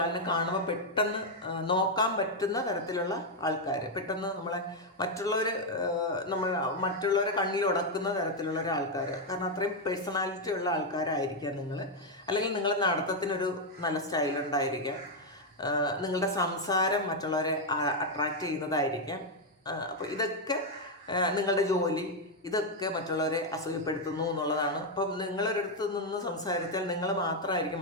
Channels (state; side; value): normal; both; correlation 0.01